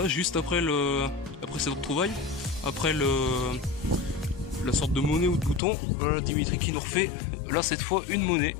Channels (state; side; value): drops out; right; at 5.6 s